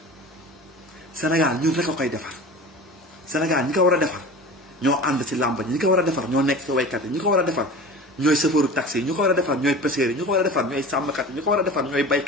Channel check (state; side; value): normal; both; correlation 0.36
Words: Sénégal ñun rek a koy defar Sénégal ñi ko war a defar ñoo ànd ci làmb ñi ko war a defar ñoo nekk ci waykat yi ñi ko war a defar ñooy chauffeuru taxi yi ñi ko war a defar ñooy pêcheurs yi ñi ko war a defar ñooy sàmmkat yi ñi ko war a defar ñooy